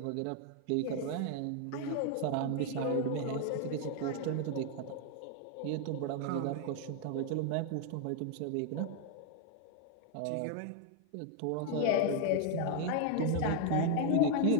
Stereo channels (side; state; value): both; different; correlation 0.00